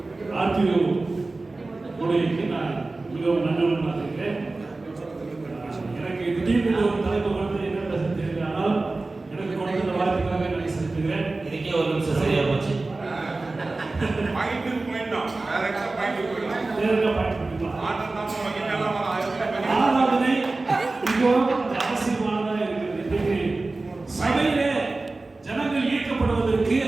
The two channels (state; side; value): quieter; left; 3.3 dB